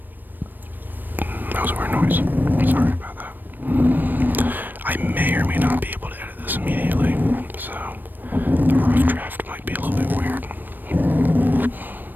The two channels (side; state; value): left; late; 0.091 ms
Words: That was a weird noise. Sorry about that. I may or may not be able to edit this immediately, so the rough draft might be a little bit weird.